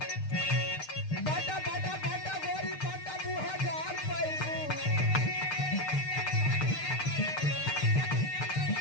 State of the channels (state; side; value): late; right; 6.6 ms